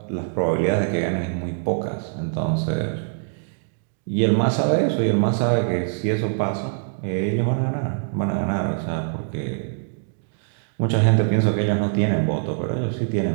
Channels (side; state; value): left; silent; digital silence